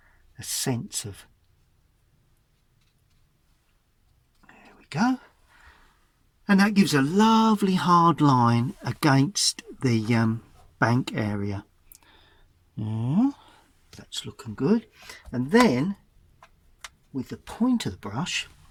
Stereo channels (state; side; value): identical; both; correlation 1.00